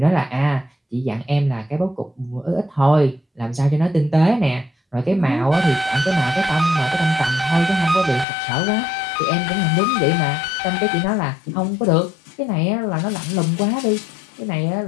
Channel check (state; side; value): drops out; right; at 8.2 s